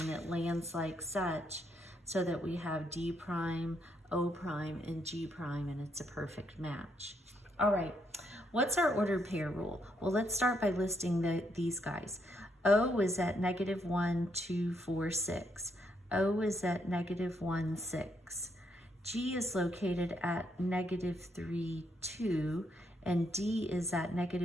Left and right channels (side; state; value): both; normal; correlation 0.76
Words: it lands like such, so that we have D prime, O prime, and G prime, and it's a perfect match. All right, what's our ordered pair rule? Well, let's start by listing these guys. O is at -1, 2, 4, 6. O is at -1, 6. G is located at -3, 2, and D is at